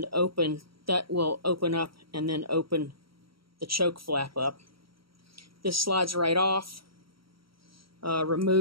open. That will open up and then open the choke flap up. This slides right off.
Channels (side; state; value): left; late; 0.75 ms